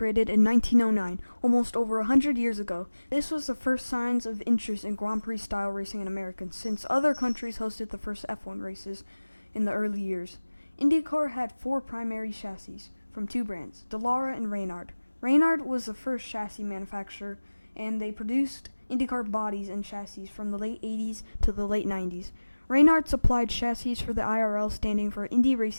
in 1909, almost over 100 years ago. This was the first signs of interest in Grand Prix-style racing in America, since other countries hosted the first F1 races in the early years. IndyCar had 4 primary chassis from 2 brands, Dallara and Reynard. Reynard was the first chassis manufacturer, and they produced IndyCar bodies and chassis from the late 80s to the late 90s. Reynard supplied chassis for the IRL, standing for Indy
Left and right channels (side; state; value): both; inverted; correlation -1.00